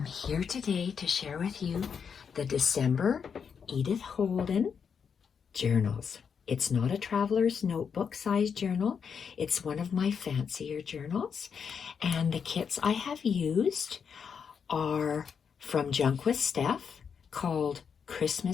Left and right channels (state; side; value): quieter; right; 6.7 dB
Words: here today to share with you the December Edith Holden journals. It's not a traveler's notebook size journal. It's one of my fancier journals. And the kits I have used are from Junk With Steph, called